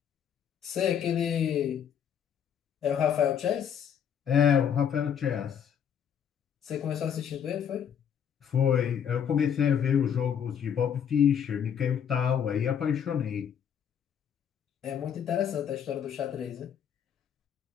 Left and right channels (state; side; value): quieter; right; 8.4 dB